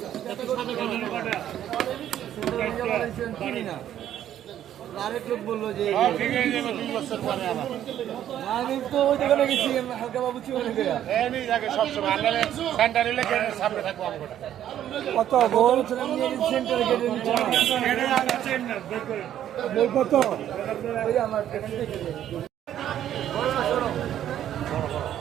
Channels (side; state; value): left; quieter; 11.1 dB